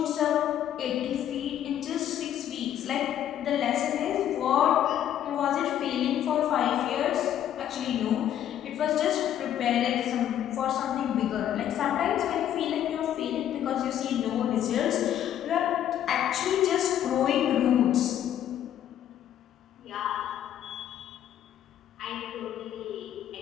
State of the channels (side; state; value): right; quieter; 10.8 dB